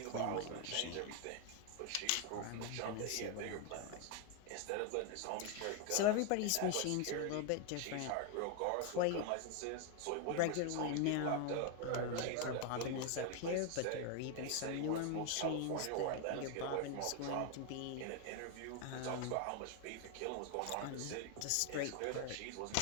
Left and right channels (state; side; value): different; both; correlation 0.01